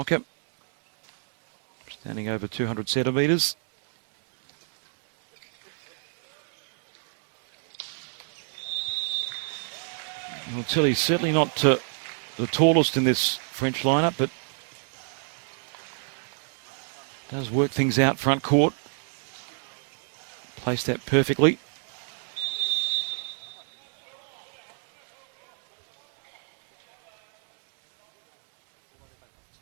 standing over 200 centimetres. Tilly's certainly not the tallest in this French lineup, but does work things out front court. Placed that perfectly.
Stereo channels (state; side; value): silent; left; 59 dB below the other